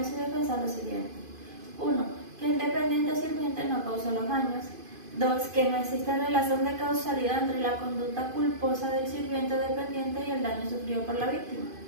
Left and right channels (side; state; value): left; late; 2.5 ms